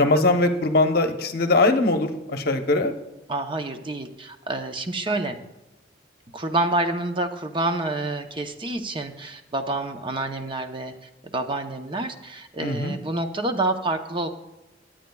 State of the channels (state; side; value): normal; both; correlation 0.08